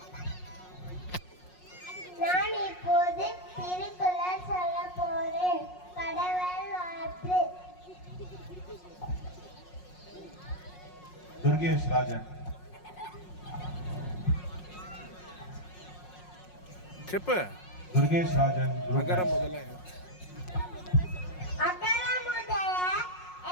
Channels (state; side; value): late; right; 5.5 ms